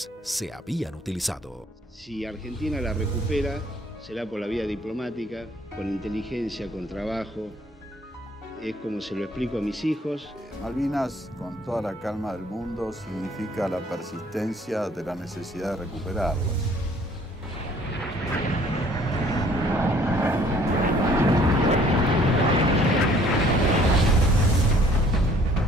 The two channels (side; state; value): both; normal; correlation 0.59